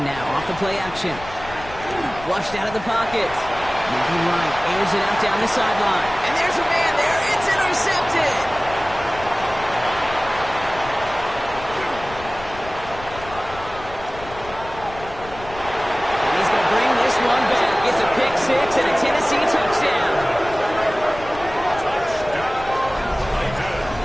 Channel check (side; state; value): left; noise; rumble, 15 dB below the sound